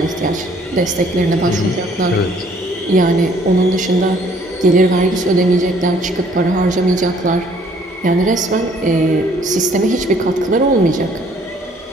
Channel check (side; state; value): both; normal; correlation 0.61